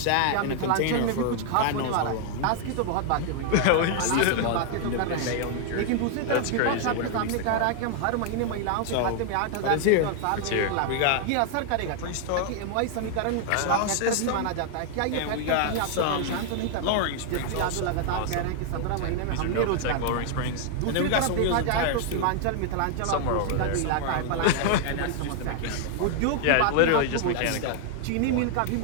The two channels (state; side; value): different; both; correlation 0.00